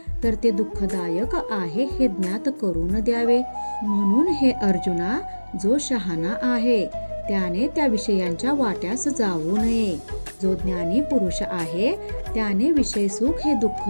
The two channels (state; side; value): inverted; both; correlation -1.00